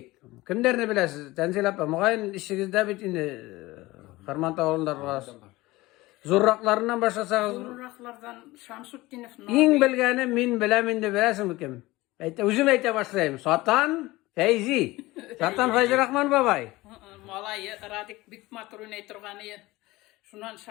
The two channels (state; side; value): quieter; right; 19.7 dB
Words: Kimlerini bilesiz? Tenzil apa, mugaýyn işigizde bit indi Kırmantaw awulundagy zurraklarından başlasağız. Zurraklardan Şamsutdinov. İň bilgeni min bilemin de bilesin kim? Özüm ayta başlaýym. Satan Feyzi. Satan Feyzi Rahman babay. Malay Radik Bikmaturun aytırgany. Şundan